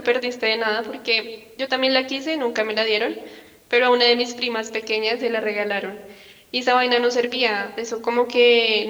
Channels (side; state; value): both; identical; correlation 1.00